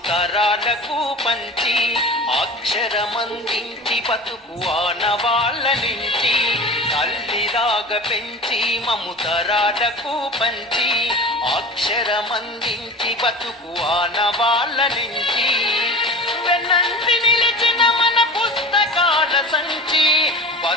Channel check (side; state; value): both; normal; correlation 0.35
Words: తరాలకు పంచి అక్షరమందించి బతుకు ఆనవాళ్ళ నుంచి తల్లిలాగా పెంచి మము తరాలకు పంచి అక్షరమందించి బతుకు ఆనవాళ్ళ నుంచి వెన్నంటి నిలిచిన మన పుస్తకాల సంచి